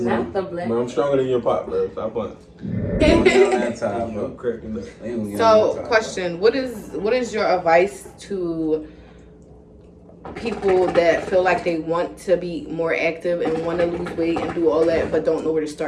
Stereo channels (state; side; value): identical; both; correlation 1.00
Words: Not the black. But I'm stronger than your pop, bro. Stop playing. So, question: What is your advice to people that feel like they want to be more active and want to lose weight and do all that, but don't know where to